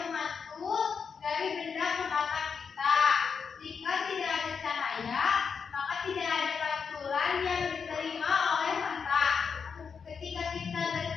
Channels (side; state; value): right; quieter; 6.1 dB